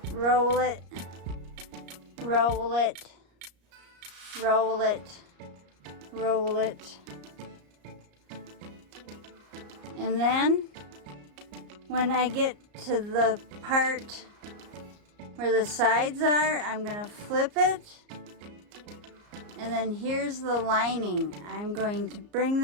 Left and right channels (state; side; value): late; left; 34 ms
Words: roll it, roll it, roll it, roll it. And then when I get to the part where the sides are, I'm going to flip it. And then here's the lining. I'm going to bring